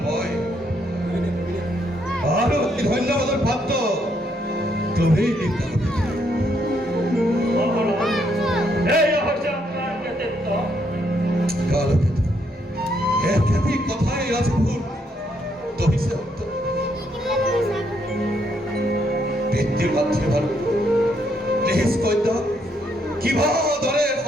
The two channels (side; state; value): both; normal; correlation 0.74